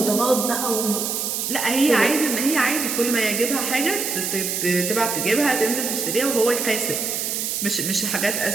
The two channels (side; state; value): right; noise; hiss, 2 dB below the sound